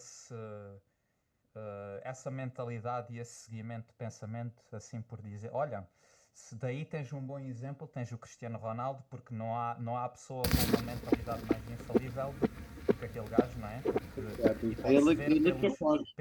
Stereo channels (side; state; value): both; identical; correlation 1.00